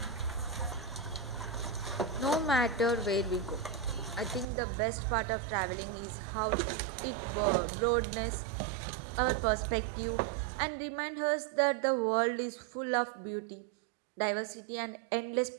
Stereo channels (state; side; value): drops out; left; at 4.5 s